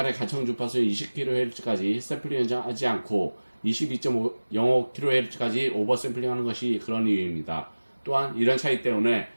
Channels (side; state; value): both; inverted; correlation -1.00